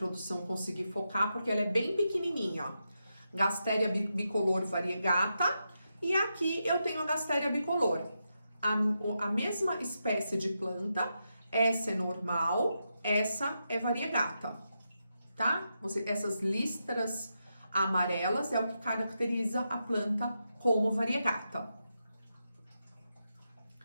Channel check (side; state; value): both; inverted; correlation -0.86